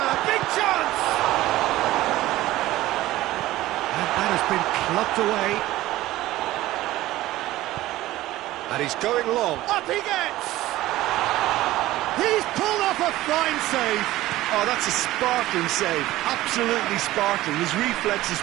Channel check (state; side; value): quieter; left; 16.3 dB